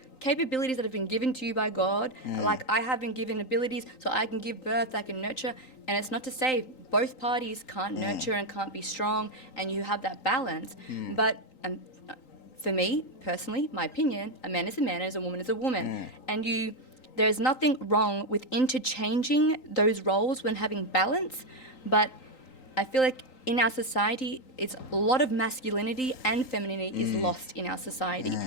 capabilities that have been given to you by God. Like, I have been given abilities so I can give birth, I can nurture. And it's not to say both parties can't nurture and can't be strong, and you have that balance. But for me, personally, my opinion, a man is a man and a woman is a woman. And there's nothing wrong with interchanging those roles when having balance. But I feel like in our society, it's a lot of masculinity and femininity is lost in our society.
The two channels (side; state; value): right; late; 3.9 ms